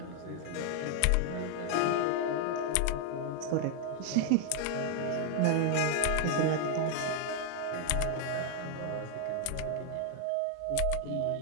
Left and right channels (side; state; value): both; different; correlation 0.00